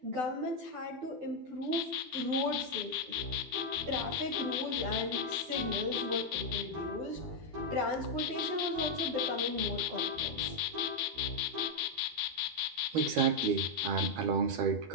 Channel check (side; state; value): left; late; 12 ms